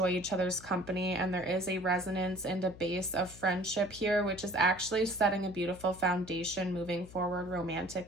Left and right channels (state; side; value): noise; left; hum, 18 dB below the sound